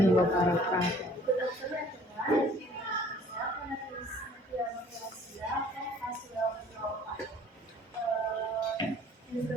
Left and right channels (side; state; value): both; normal; correlation 0.54